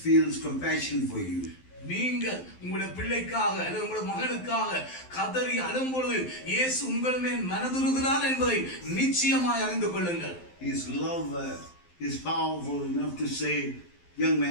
feels compassion for you. நீங்கள் உங்களுடைய பிள்ளைக்காக அல்லது உங்களுடைய மகனுக்காக கதறி அழும்பொழுது இயேசு உங்கள் மேல் மனதுருகிறார் என்பதை நிச்சயமாய் அறிந்து கொள்ளுங்கள். His love is powerful enough to say, young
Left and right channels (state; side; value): late; right; 12 ms